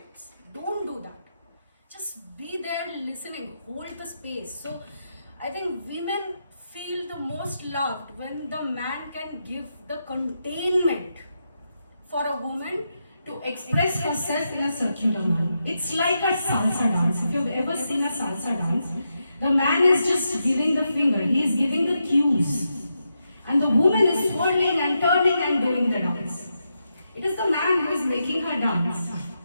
Don't do that. Just be there listening, hold the space. So I think women feel the most loved when the man can give the containment for a woman to express herself in a circular manner. It's like a salsa dance. If you've ever seen a salsa dance, the man is just giving the finger, he is giving the cues. And the woman is twirling and turning and doing the dance. It is the man who is making her dance.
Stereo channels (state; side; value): inverted; both; correlation -0.85